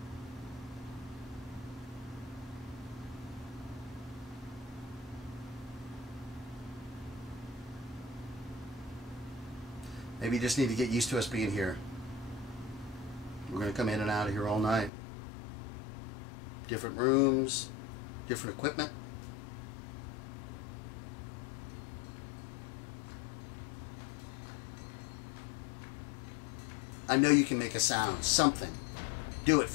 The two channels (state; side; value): drops out; right; at 14.9 s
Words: Maybe you just need to get used to us being here. We're going to come in and out of here all night. Different rooms, different equipment. I know you can make a sound, something. Do it